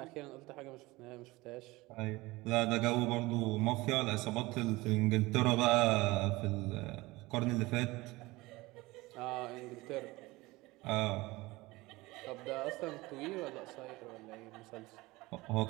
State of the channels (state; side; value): quieter; left; 21.0 dB